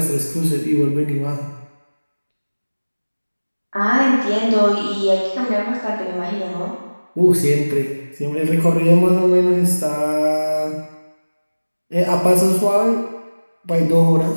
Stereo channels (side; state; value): both; inverted; correlation -1.00